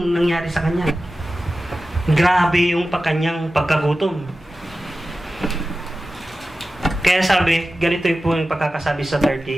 nangyari sa kanya. Grabe yung kanyang pagkagutom. Kaya sabi, ganito po yung pagkakasabi sa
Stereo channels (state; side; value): normal; both; correlation 0.94